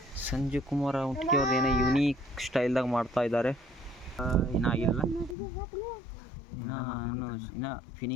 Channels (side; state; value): right; drops out; at 5.4 s